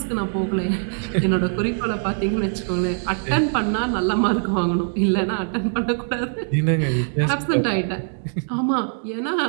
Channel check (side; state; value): left; silent; digital silence